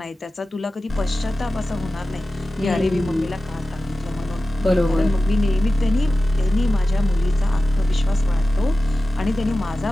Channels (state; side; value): normal; both; correlation 0.95